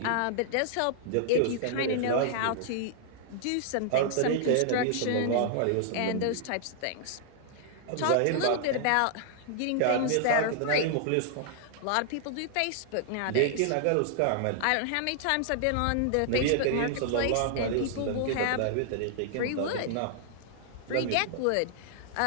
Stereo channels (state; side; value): different; both; correlation -0.01